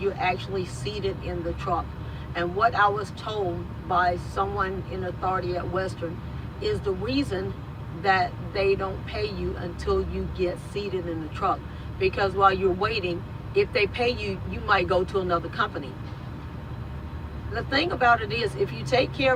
actually seated in the truck. And what I was told by someone in authority at Western is the reason that they don't pay you until you get seated in the truck. Because while you're waiting, if they pay you, you might go to another company. The thing about it is, if you take care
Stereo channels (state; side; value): identical; both; correlation 1.00